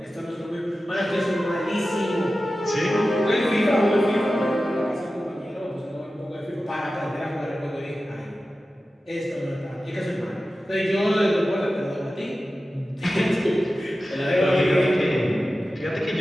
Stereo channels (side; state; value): both; normal; correlation 0.94